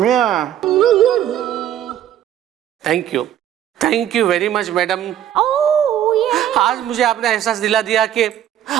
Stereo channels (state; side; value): quieter; left; 11.0 dB